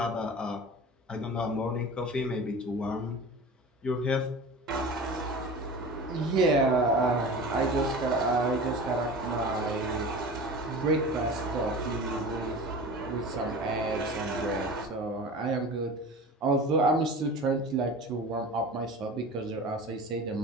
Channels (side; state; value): both; normal; correlation 0.35